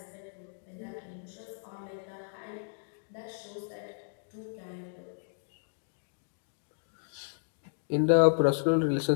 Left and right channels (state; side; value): silent; right; digital silence